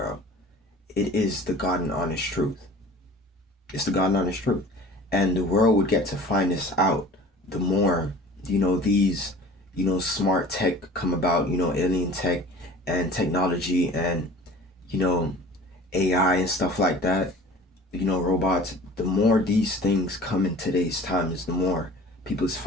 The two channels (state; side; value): normal; both; correlation 0.45